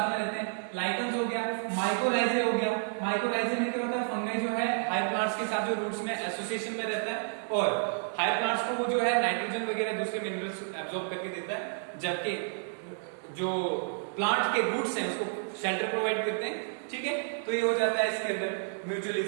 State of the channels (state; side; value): silent; left; digital silence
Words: में रहते हैं। लाइकेंस हो गया, माइकोराइजे हो गया, माइकोराइजे में क्या होता है, फंगाई जो है हायर प्लांट्स के साथ जो रूट्स में एसोसिएशन में रहता है और हायर प्लांट्स को वो जो है नाइट्रोजन वगैरह दूसरे मिनरल्स एब्जॉर्ब करके देता है, जबकि जो प्लांट के रूट्स हैं उसको शेल्टर प्रोवाइड करते हैं। ठीक है, तो ये हो जाता है इसके अंदर